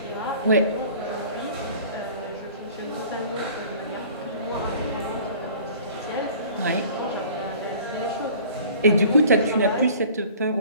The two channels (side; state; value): both; inverted; correlation -0.48